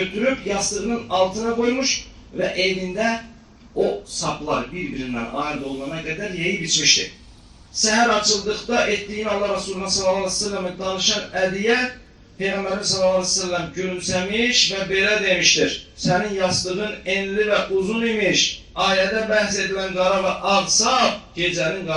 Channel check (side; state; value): both; identical; correlation 1.00